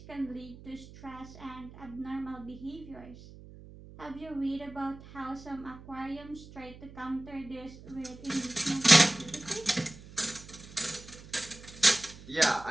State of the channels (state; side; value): noise; right; hum, 18 dB below the sound